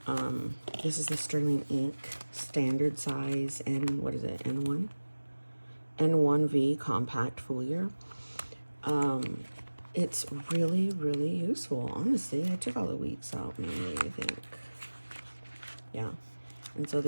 This is the Sterling Ink standard size and what is it, N1? N1V compact foliar. It's really, really useful, honestly. I took all the weeks out mainly, I think. Yeah. And so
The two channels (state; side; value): inverted; both; correlation -1.00